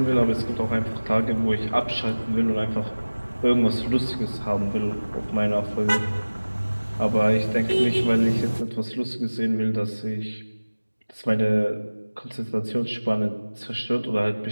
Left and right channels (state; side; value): inverted; both; correlation -1.00